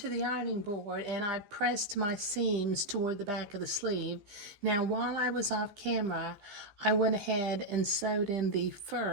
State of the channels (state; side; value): late; left; 15 ms